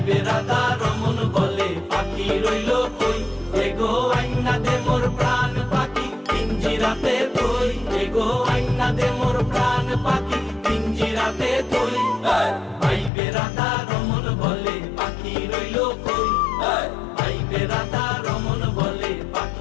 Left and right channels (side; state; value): right; drops out; at 13.1 s